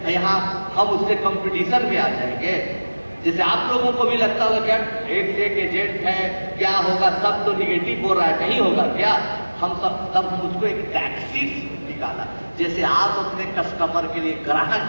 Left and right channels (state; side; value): inverted; both; correlation -1.00